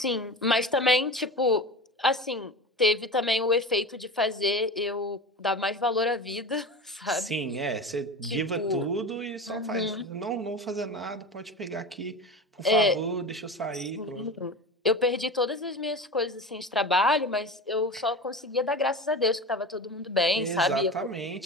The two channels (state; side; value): normal; both; correlation 0.30